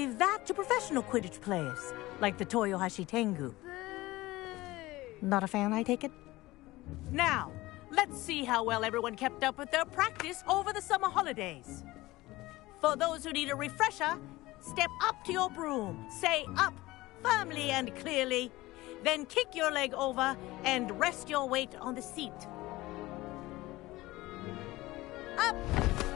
that to professional Quidditch players, like the Toyohashi Tengu. Boo! Not a fan, I take it? Now, let's see how well everyone kept up with their practice over the summer holidays. For those who need a refresher, step up to your broom, say up firmly and clearly, then kick your leg over and rest your weight on the seat. Up!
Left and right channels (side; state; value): right; quieter; 19.0 dB